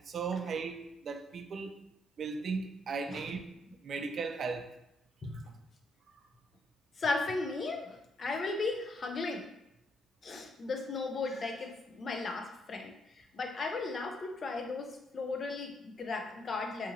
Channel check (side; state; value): both; normal; correlation 0.73